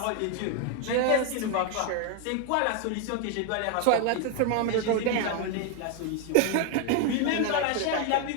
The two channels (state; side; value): different; both; correlation 0.01